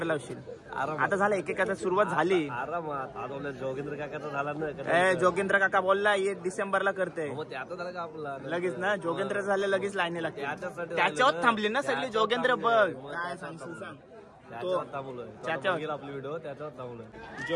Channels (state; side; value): identical; both; correlation 1.00